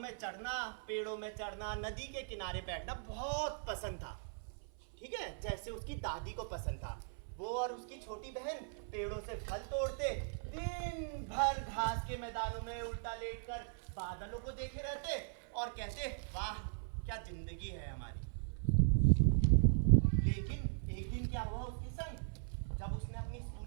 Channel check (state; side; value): silent; left; 52 dB below the other